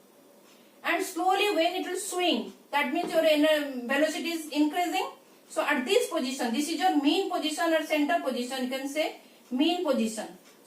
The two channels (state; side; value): identical; both; correlation 1.00